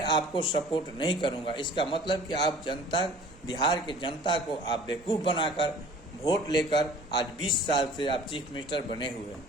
आपको सपोर्ट नहीं करूंगा। इसका मतलब कि आप जनता, बिहार के जनता को आप बेवकूफ़ बनाकर वोट लेकर आज 20 साल से आप चीफ मिनिस्टर बने हुए हैं।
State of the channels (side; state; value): both; normal; correlation 0.48